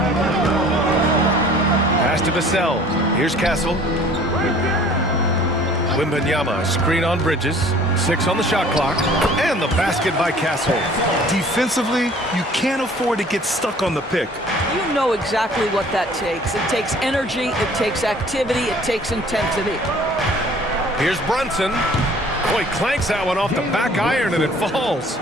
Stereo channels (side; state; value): both; normal; correlation 0.52